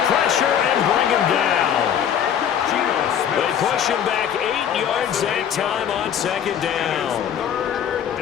pressure and bring him down. They push him back 8 yards that time on 2nd down.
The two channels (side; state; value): right; quieter; 9.0 dB